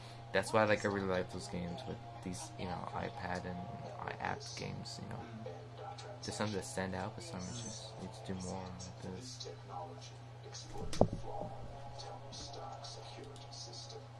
That's why like I really like those games with these, iPad and app games. There's some that stand out, but some just need to do more like this.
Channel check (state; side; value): identical; both; correlation 1.00